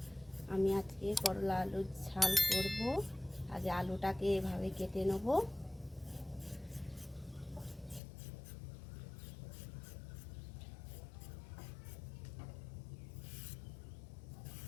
আমি আজকে করলা আলুর ঝাল করব। আগে আলুটাকে এভাবে কেটে নেব।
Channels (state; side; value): drops out; right; at 8.0 s